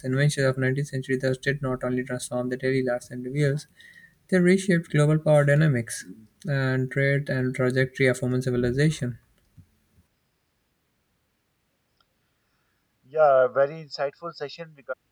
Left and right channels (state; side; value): identical; both; correlation 1.00